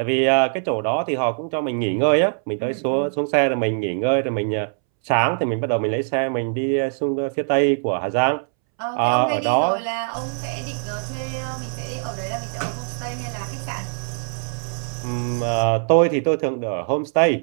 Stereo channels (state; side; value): silent; left; 64 dB below the other